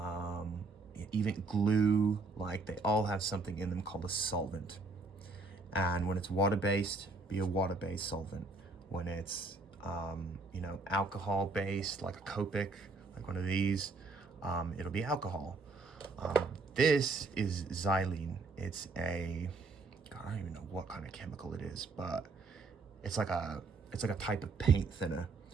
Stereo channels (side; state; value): left; quieter; 3.7 dB